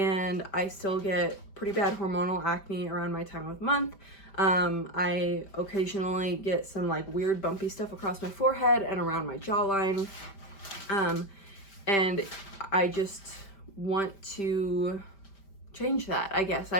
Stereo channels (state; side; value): late; right; 5.1 ms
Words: I still get pretty bad hormonal acne around my time of month. I occasionally get some like weird bumpy stuff across my forehead and around my jawline, and I just want to change that, I guess.